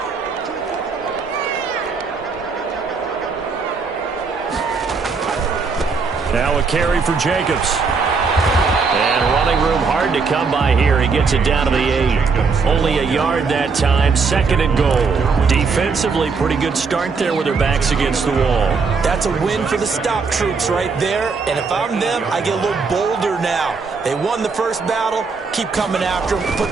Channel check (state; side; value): quieter; left; 4.8 dB